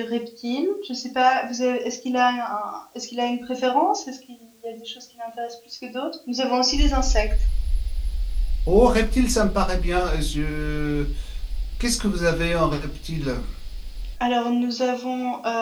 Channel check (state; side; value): identical; both; correlation 1.00